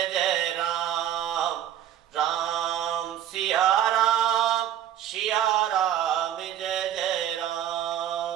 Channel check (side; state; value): left; quieter; 10.8 dB